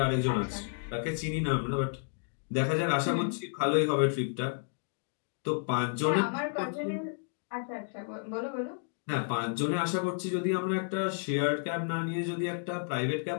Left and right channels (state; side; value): silent; right; digital silence